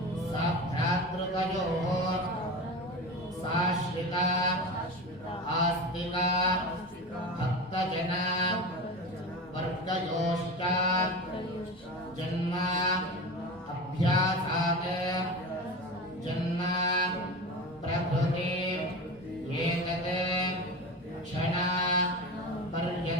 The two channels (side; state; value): both; normal; correlation 0.28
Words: साभ्रातृकयोः साश्रिता आस्तिक भक्तजन वर्गयोश्च जन्म अभ्यासात् जन्म प्रभृति एतत् क्षण